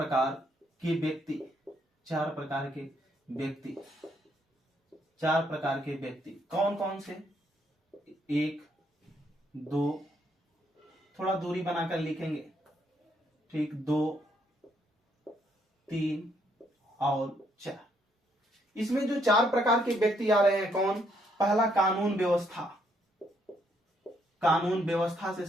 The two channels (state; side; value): normal; both; correlation 0.72